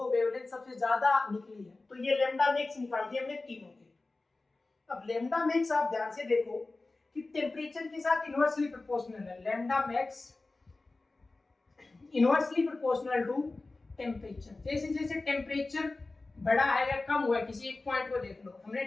वेवलेंथ सबसे ज्यादा निकली है, तो ये लैम्डा मैक्स निकाल दिए हमने तीनों के। अब लैम्डा मैक्स आप ध्यान से देखो कि टेम्परेचर के साथ इनवर्सली प्रोपोर्शनल है। Lambda max inversely proportional to temperature. जैसे जैसे टेम्परेचर बढ़ा है या कम हुआ है, किसी एक पॉइंट को देख लो, हमने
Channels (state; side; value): quieter; right; 3.3 dB